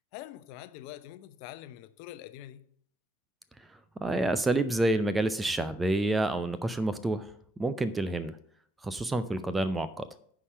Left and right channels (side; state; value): both; normal; correlation 0.81